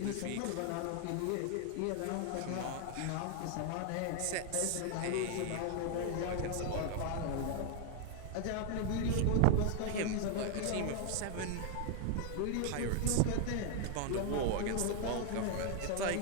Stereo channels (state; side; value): different; both; correlation 0.00